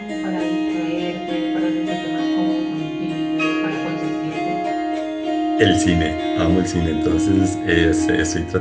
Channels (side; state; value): both; identical; correlation 1.00